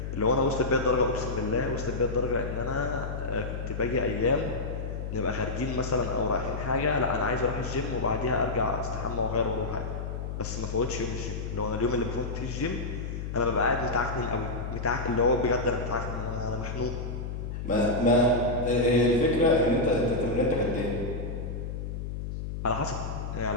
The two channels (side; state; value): left; noise; hum, 5 dB below the sound